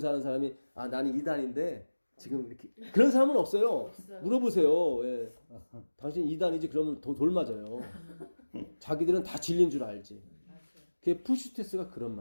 사람이 나는 이단인데 지금 이렇게 그런 사람은 없어요. 물어보세요. 예. 당신 이단이지 그러면 돌 맞아요. 자기들은 다 진리인 줄 알지. 그게 푸시테스가 그런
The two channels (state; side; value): inverted; both; correlation -1.00